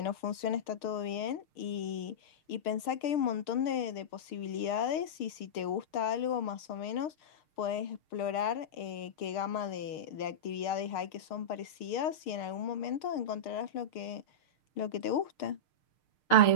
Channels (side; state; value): right; late; 6.6 ms